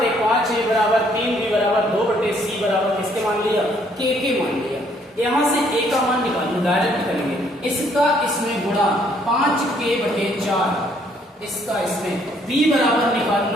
बराबर 3b बराबर 2/c बराबर किसके मान लिया? के मान लिया। यहां से a का मान निकालना डायरेक्ट करेंगे, इसका इसमें गुणा 5k/4, इसका इसमें b बराबर निकाल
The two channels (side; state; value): both; normal; correlation 0.66